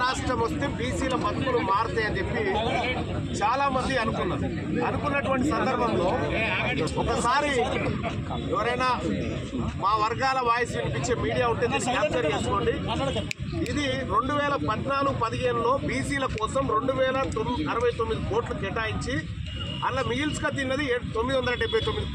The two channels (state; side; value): identical; both; correlation 1.00